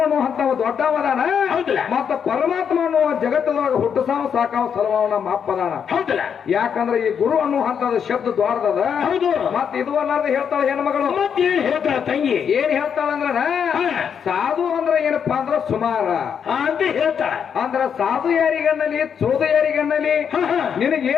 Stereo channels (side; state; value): right; quieter; 7.4 dB